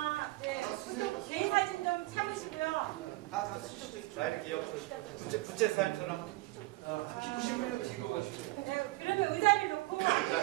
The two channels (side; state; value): left; quieter; 21.0 dB